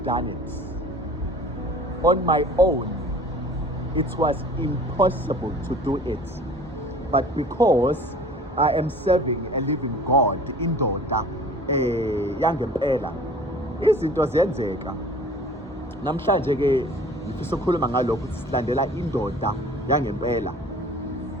done it. On my own it was impossible to do it. But because I am serving a living God, indoda yangempela, izinto ziyenzeka. Namhlanje ke ngifisa ukukhuluma ngalokho ukuthi silandela indoda yangempela.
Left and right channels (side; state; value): both; normal; correlation 0.46